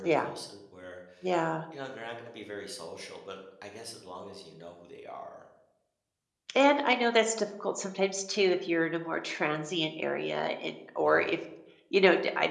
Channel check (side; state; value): both; identical; correlation 1.00